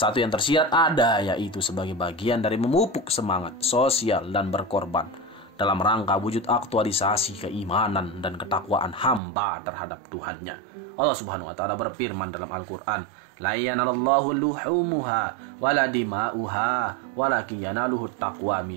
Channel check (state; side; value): drops out; left; at 9.2 s